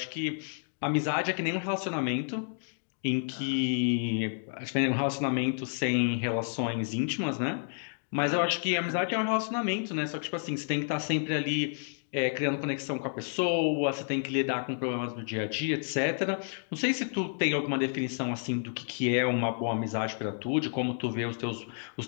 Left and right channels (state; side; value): silent; right; digital silence